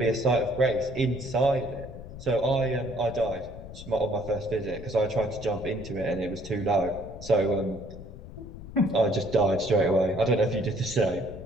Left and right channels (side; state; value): left; noise; rumble, 13 dB below the sound